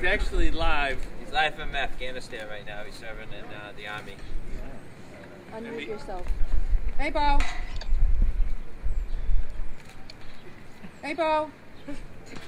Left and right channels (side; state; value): both; identical; correlation 1.00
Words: actually live. He's live from Afghanistan right now. He's serving in the army. Unmute yourself. Hey, Bo. Hey, Bo.